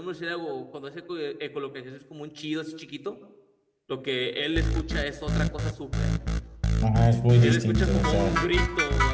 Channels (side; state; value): both; identical; correlation 1.00